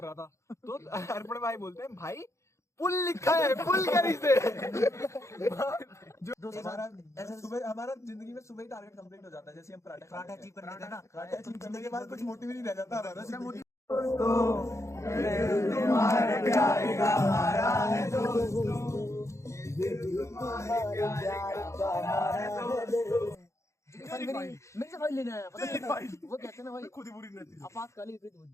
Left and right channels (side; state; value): right; late; 0.14 ms